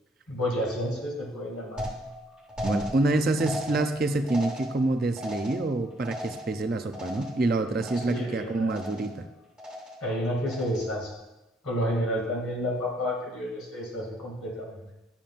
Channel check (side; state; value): both; normal; correlation 0.68